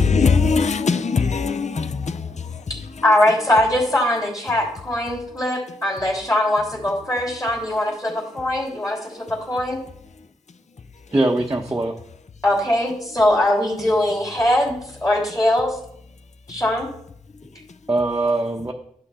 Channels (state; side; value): normal; both; correlation 0.80